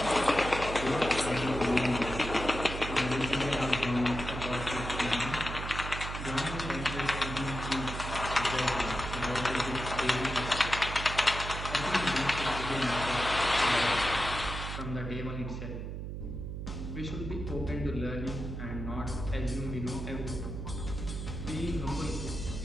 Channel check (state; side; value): noise; right; hum, 6 dB below the sound